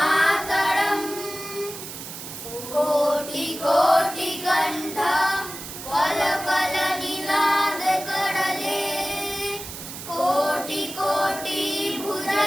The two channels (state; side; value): noise; right; hiss, 10 dB below the sound